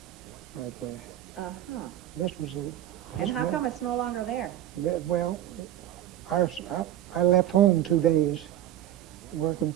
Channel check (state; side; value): quieter; left; 12.3 dB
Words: right there. Uh-huh. This was And how come it's no longer there? well, I left home 2 days, working